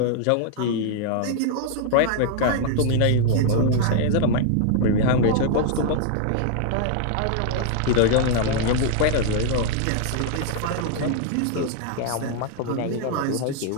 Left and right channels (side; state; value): both; different; correlation 0.00